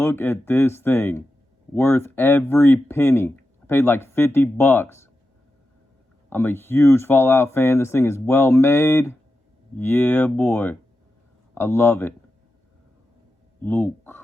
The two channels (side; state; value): both; normal; correlation 0.90